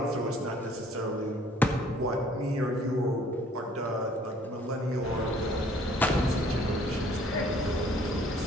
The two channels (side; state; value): both; normal; correlation 0.58